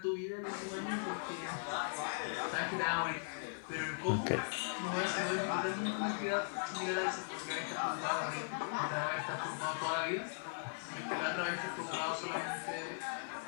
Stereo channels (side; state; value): right; silent; digital silence